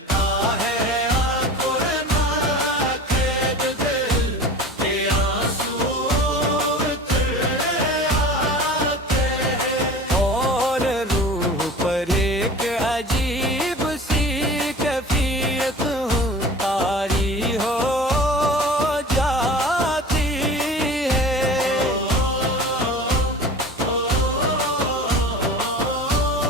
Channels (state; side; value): normal; both; correlation 0.39